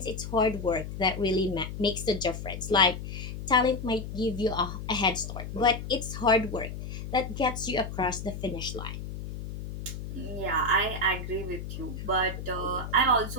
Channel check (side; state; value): left; noise; hum, 8 dB below the sound